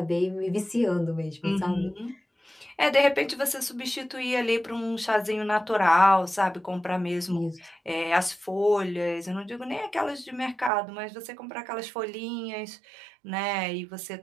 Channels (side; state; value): left; drops out; at 10.7 s